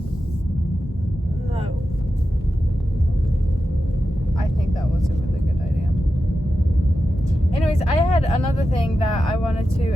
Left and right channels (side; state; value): both; normal; correlation 0.91